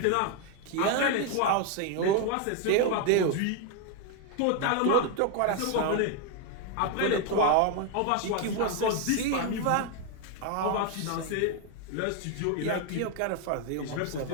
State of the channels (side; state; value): both; different; correlation 0.01